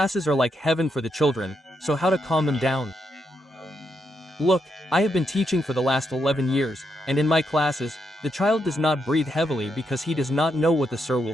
are like heaven for the children, so how to calm them down? Look, I have been teaching for the last 11 years, and in my classes, the child does not breathe heavily because he does not know what the sir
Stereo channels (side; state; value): both; normal; correlation 0.80